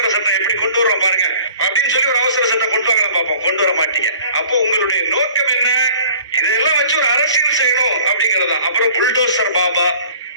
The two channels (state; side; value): inverted; both; correlation -0.49